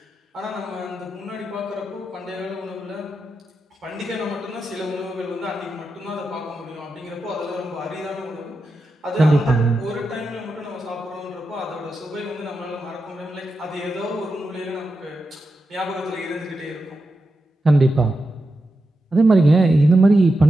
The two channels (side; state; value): both; normal; correlation 0.89